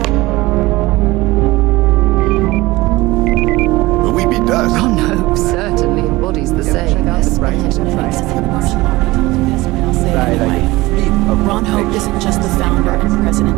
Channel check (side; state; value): left; quieter; 20.0 dB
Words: Will we be dust? Ron Hope certainly embodies the saying. Ron Hope isn't just the founder and president